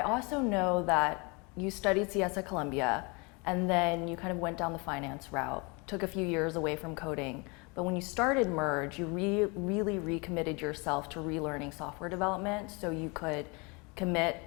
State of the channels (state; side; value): quieter; right; 29.3 dB